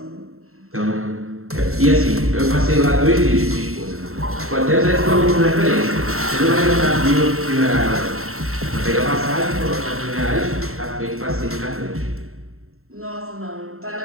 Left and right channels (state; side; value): late; left; 0.63 ms